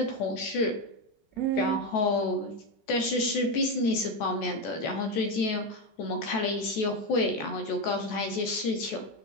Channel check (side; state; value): right; late; 14 ms